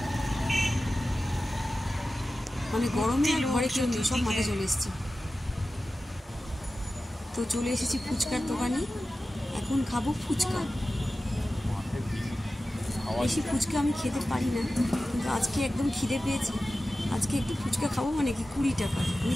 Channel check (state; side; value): normal; both; correlation 0.94